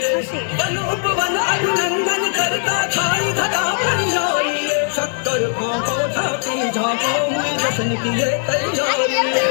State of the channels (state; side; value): silent; right; 67 dB below the other